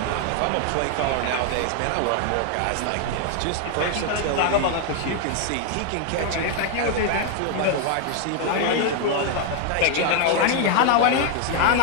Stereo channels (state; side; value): different; both; correlation 0.00